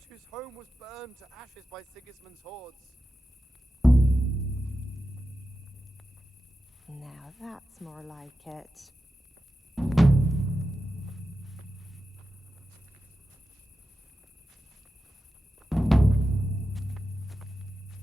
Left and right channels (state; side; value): normal; both; correlation 0.91